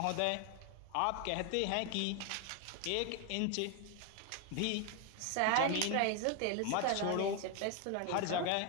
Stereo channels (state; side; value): different; both; correlation 0.01